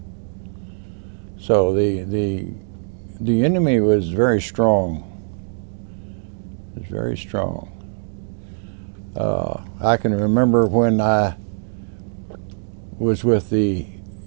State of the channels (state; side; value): silent; left; digital silence